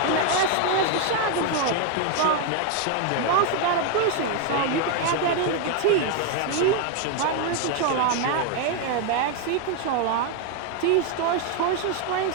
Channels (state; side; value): different; both; correlation 0.01